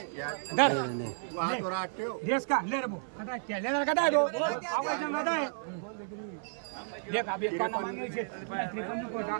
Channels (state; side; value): silent; left; 56 dB below the other